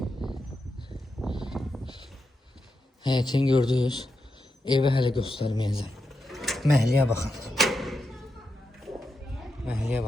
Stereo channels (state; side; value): normal; both; correlation 0.86